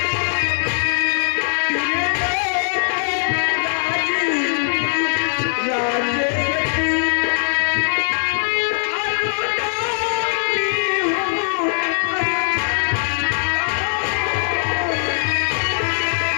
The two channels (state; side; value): silent; right; digital silence